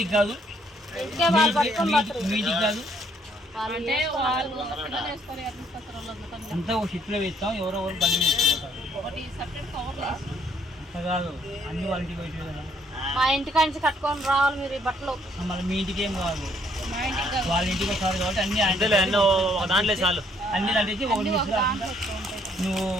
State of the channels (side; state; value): both; normal; correlation 0.67